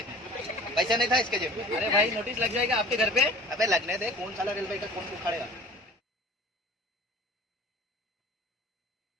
पैसा नहीं था इसके जेब में। अरे भाई नोटिस लग जाएगा आपके घर पे। अबे लगने दे, कौन साला रेलवे का कौन उखाड़ेगा।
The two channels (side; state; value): both; normal; correlation 0.45